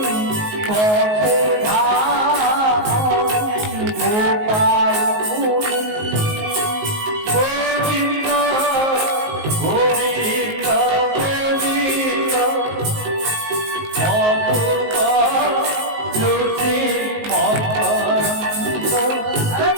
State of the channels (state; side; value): late; left; 19 ms